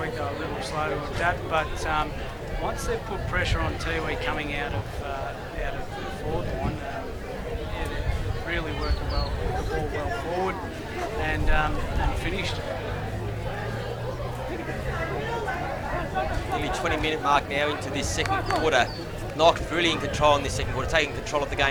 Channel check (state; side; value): identical; both; correlation 1.00